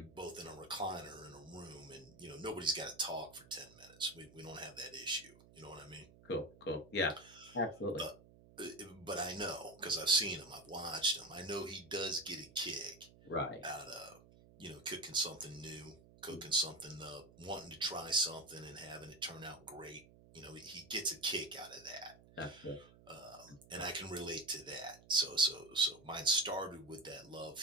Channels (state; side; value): noise; right; hum, 22 dB below the sound